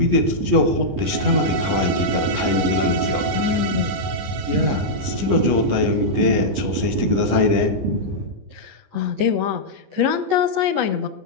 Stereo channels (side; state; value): left; late; 15 ms